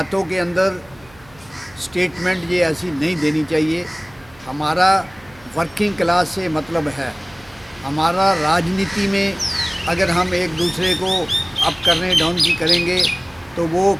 के अंदर स्टेटमेंट ये ऐसी नहीं देनी चाहिए। हमारा वर्किंग क्लास से मतलब है, हमारा राजनीति में अगर हम एक दूसरे को अप करने डाउन की करेंगे तो वो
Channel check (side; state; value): right; noise; hum, 26 dB below the sound